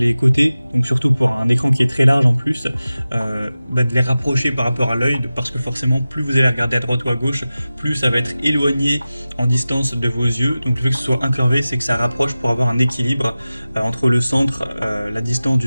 côtés, donc surtout pour un écran qui est très large en plus, de les rapprocher par rapport à l'œil parce que forcément plus vous allez regarder à droite ou à gauche, plus ça va être éloigné en distance de vos yeux. Donc le fait que ce soit incurvé, c'est que ça rapproche pour avoir un équilibre entre le centre, la distance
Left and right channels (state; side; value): inverted; both; correlation -0.96